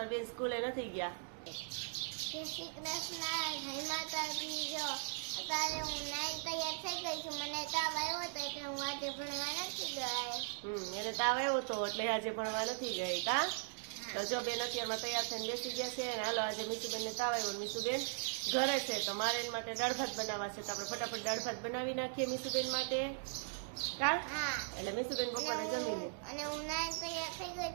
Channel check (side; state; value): left; silent; digital silence